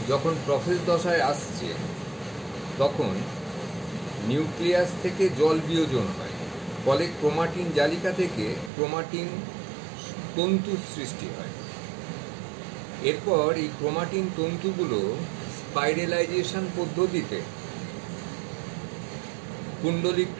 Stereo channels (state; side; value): drops out; left; at 8.7 s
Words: যখন প্রোফেজ দশায় আসছে তখন নিউক্লিয়াস থেকে জল বিয়োজন হয়, ফলে ক্রোমাটিন জালিকা থেকে ক্রোমাটিন তন্তুর সৃষ্টি হয়। এরপর এই ক্রোমাটিন তন্তুগুলো স্পাইরালাইজেশন পদ্ধতিতে